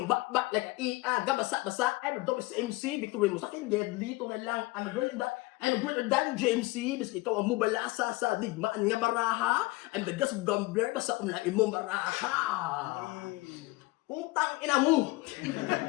back like a gabasa-basa. I'm a dopest MC, victory mo sa akin, deadly. Ito na lang, I'm greater than JMC. Bis ikaw ang mubalasa sa digmaan nga baraha. I'm the gas of gambler, basta kung lang imong baraha. Putang ina mo.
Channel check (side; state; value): right; quieter; 21.5 dB